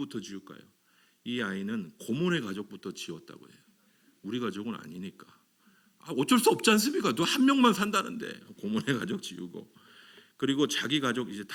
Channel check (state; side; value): identical; both; correlation 1.00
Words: 지울까요? 이 아이는 고모네 가족부터 지웠다고 해요. 우리 가족은 아니니까. 어쩔 수 없지 않습니까? 너 한 명만 산다는데 고모네 가족 지우고. 그리고 자기 가족 이제